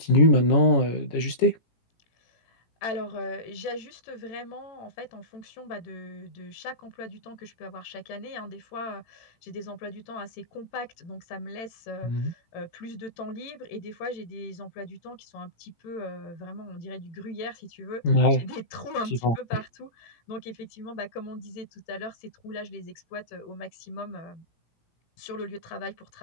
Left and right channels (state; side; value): late; right; 18 ms